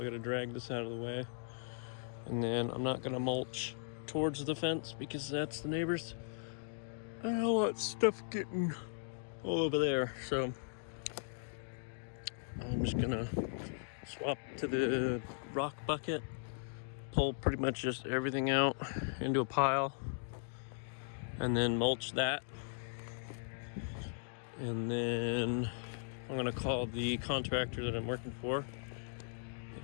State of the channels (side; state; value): right; silent; digital silence